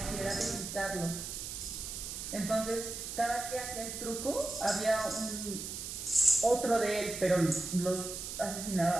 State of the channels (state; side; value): noise; right; hiss, 6 dB below the sound